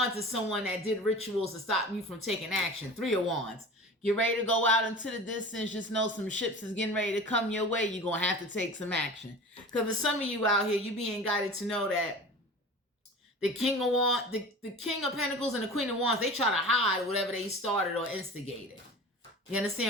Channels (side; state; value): both; normal; correlation 0.37